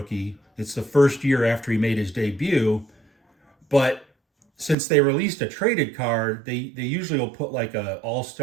It's the first year after he made his debut. But since they released a traded card, they usually will put like a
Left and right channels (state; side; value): drops out; left; at 4.8 s